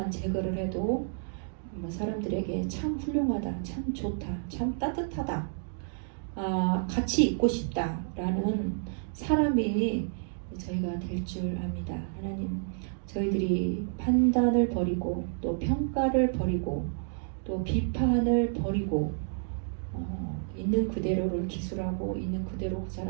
제거를 해도 사람들에게 참 훌륭하다, 참 좋다, 참 따뜻하다, 같이 있고 싶다 라는 사람이 저희가 될 줄 압니다. 하나님, 저희들이 판단을 버리고 또 평가를 버리고 또 비판을 버리고 있는 그대로를 기술하고 있는 그대로 그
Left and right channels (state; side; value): silent; left; digital silence